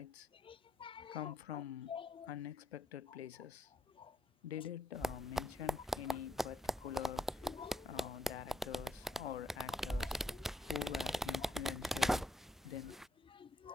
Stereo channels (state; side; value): normal; both; correlation 0.74